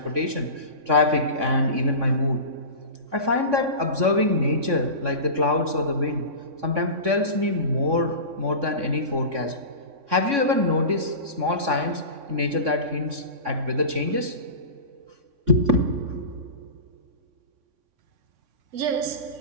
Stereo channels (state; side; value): late; left; 3.6 ms